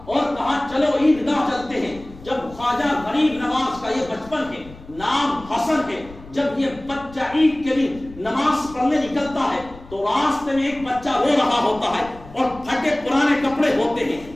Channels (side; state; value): left; noise; rumble, 19 dB below the sound